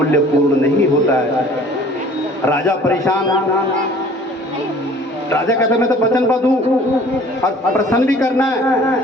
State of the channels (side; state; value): both; normal; correlation 0.51